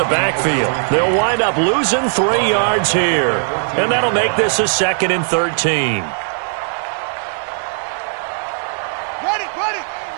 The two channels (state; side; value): silent; left; digital silence